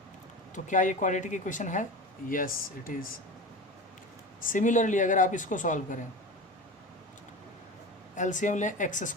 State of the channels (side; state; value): both; normal; correlation 0.30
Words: तो क्या ये क्वाड्रेटिक इक्वेशन है, यस इट इज़। सिमिलरली अगर आप इसको सॉल्व करें, एलसीएम लें एक्स